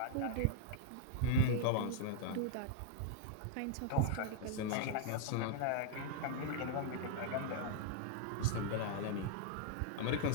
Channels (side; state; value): both; different; correlation 0.00